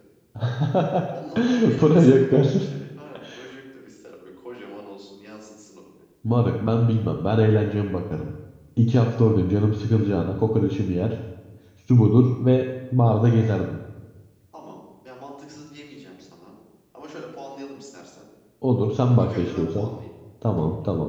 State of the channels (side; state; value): both; identical; correlation 1.00